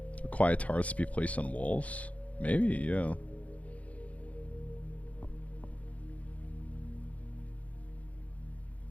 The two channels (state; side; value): late; right; 0.067 ms